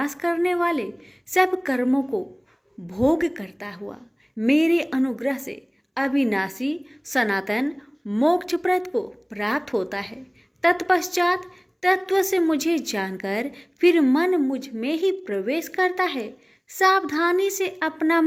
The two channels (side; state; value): both; identical; correlation 1.00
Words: करने वाले सब कर्मों को भोग करता हुआ मेरे अनुग्रह से अविनाशी सनातन मोक्षप्रद को प्राप्त होता है। तत्पश्चात तत्व से मुझे जानकर फिर मन मुझ में ही प्रवेश करता है। सावधानी से अपना